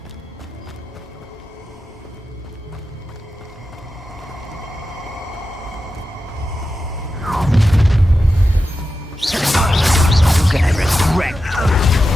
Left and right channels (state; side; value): normal; both; correlation 0.91